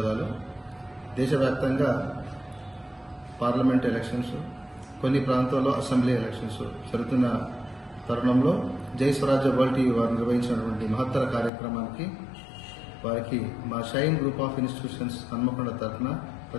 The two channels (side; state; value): right; drops out; at 11.5 s